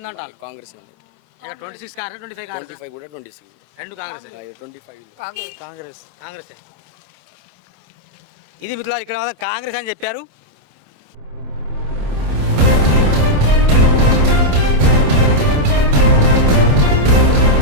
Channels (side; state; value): left; late; 27 ms